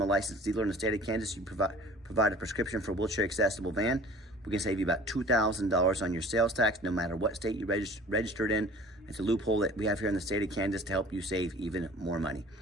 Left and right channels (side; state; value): both; normal; correlation 0.47